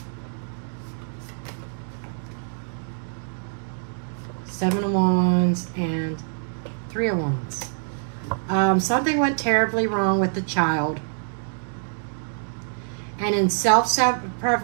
Seven of Wands and Three of Wands. Something went terribly wrong with the child, and in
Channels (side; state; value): left; silent; digital silence